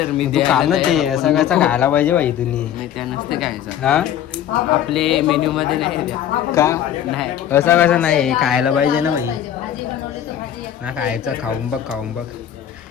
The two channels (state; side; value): quieter; right; 10.5 dB